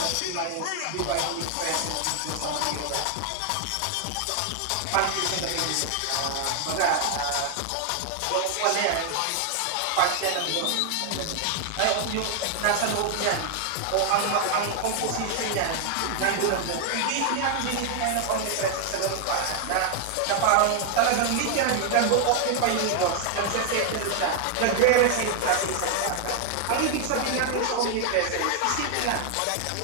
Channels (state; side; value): different; both; correlation 0.00